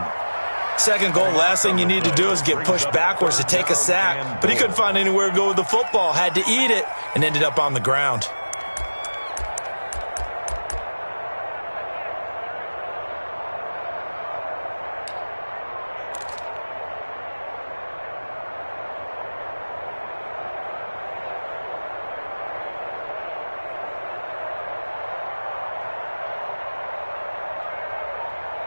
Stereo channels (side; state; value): both; inverted; correlation -1.00